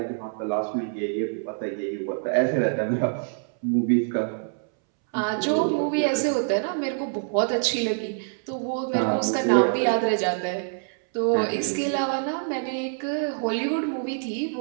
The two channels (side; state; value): left; silent; 61 dB below the other